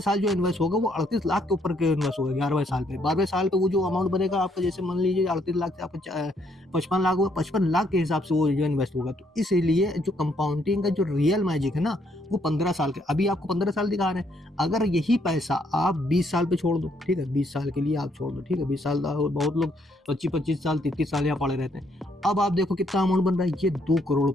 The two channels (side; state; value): both; normal; correlation 0.71